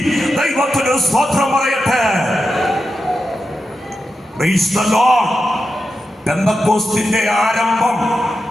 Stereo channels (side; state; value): both; normal; correlation 0.89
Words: ദൈവത്തിന് സ്തോത്രം പറയട്ടെ. Praise the Lord. പെന്തക്കോസ്തിന്റെ ആരംഭം,